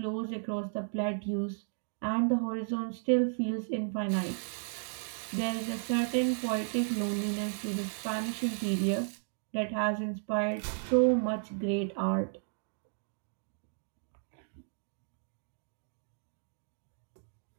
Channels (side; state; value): left; silent; digital silence